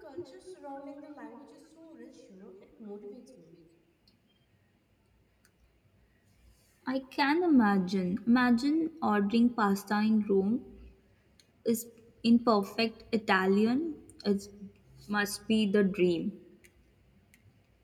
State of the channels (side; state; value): both; identical; correlation 1.00